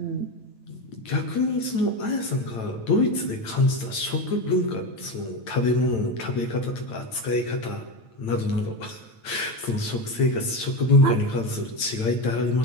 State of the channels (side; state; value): right; late; 8.9 ms